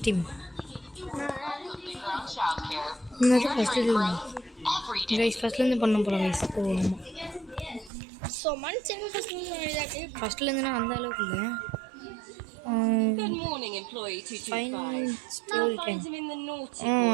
team. ஃபஸ்ட்லேருந்து பண்ண போகிறோம் கைஸ். ஃபஸ்ட்லேருந்து நான் அந்த அளவுக்கு இல்லை.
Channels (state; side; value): drops out; left; at 7.9 s